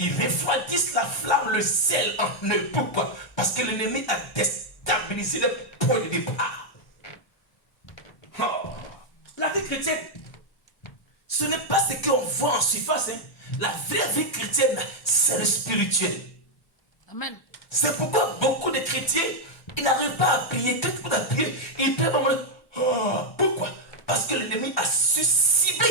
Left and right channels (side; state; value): right; late; 1.2 ms